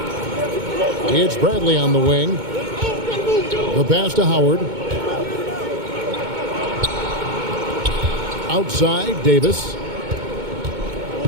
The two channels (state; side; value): late; left; 2.2 ms